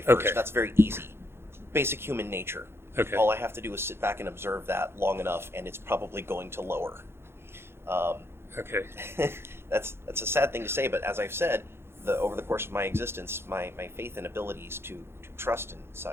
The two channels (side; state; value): left; late; 0.12 ms